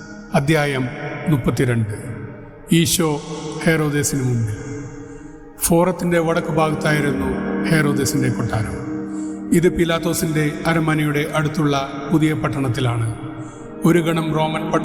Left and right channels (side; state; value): both; identical; correlation 1.00